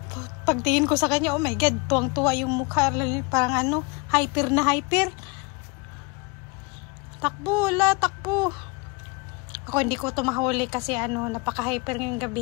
Pagtingin ko sa kanya, oh my God, tuwang-tuwa yung mukha, parang ano, hyper na hyper. Takbo, takbo. Ako hindi ko ito mahuli kasi ano, napaka-hyper ngayong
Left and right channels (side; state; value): right; quieter; 28.9 dB